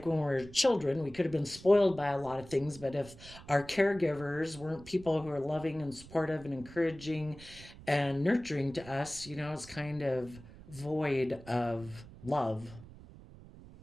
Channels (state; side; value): noise; right; rumble, 18 dB below the sound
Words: when we were children, we could have been spoiled by a lot of things, but if our caregivers weren't people who are loving and supportive and encouraging and nurturing to us, it's kind of void of love.